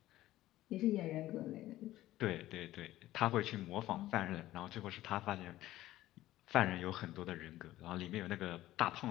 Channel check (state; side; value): quieter; right; 15.3 dB